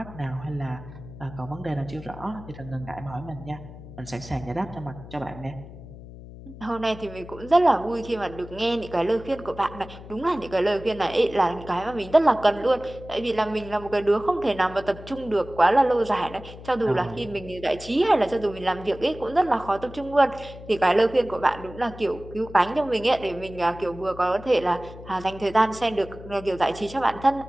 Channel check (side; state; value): left; noise; hum, 15 dB below the sound